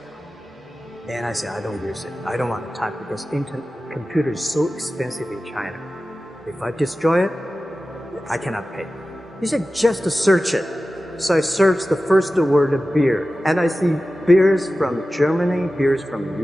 And I said, I don't use it. I don't want to type because computer is so expensive in China. If I destroy it, I cannot pay. He said, just to search it. So I searched the first word, beer. And I see beers from Germany, beers from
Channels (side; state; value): both; normal; correlation 0.95